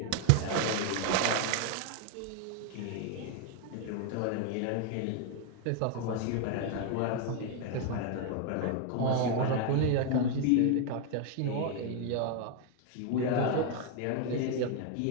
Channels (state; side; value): different; both; correlation 0.00